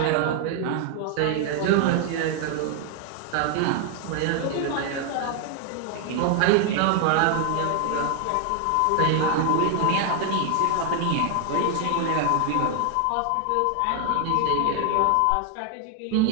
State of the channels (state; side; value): different; both; correlation 0.00